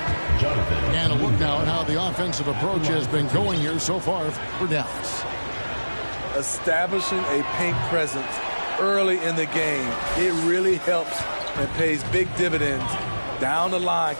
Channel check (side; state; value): both; inverted; correlation -1.00